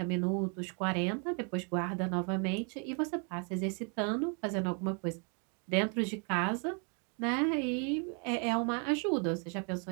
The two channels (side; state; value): left; quieter; 38.0 dB